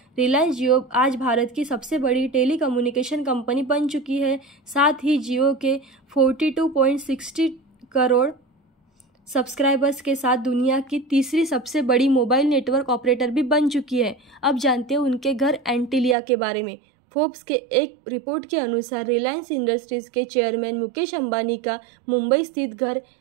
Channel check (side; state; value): left; drops out; at 16.2 s